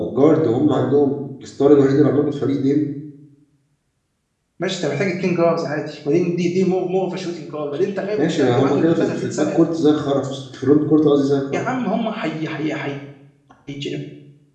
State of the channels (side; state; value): both; identical; correlation 1.00